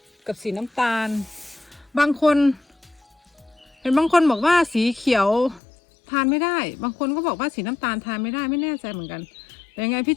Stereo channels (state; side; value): drops out; right; at 5.6 s